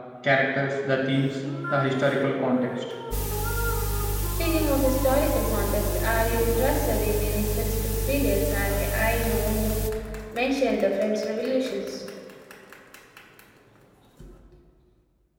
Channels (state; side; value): identical; both; correlation 1.00